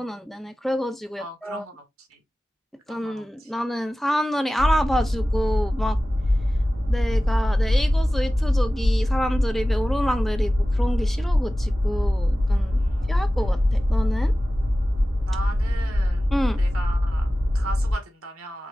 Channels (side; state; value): both; normal; correlation 0.96